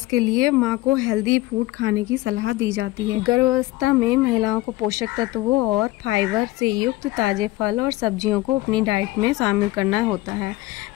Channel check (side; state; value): right; quieter; 18.3 dB